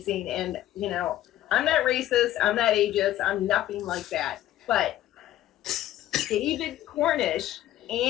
and I'm not racist, I'm not ageist, I'm nothing like that. But David Cornish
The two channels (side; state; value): right; quieter; 13.5 dB